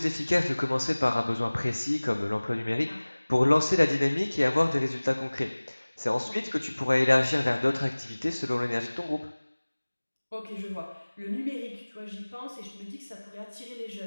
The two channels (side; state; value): both; inverted; correlation -1.00